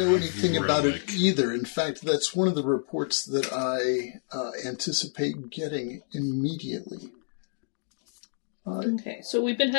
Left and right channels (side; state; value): right; silent; digital silence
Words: matter anything of about it relic. either. In fact, that's one of the reports that I anticipate getting immediately. Okay, so we've been